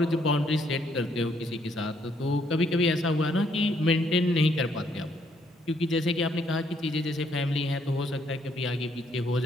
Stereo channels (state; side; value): normal; both; correlation 0.70